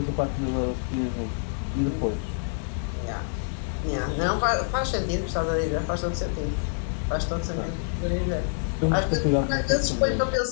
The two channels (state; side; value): silent; right; digital silence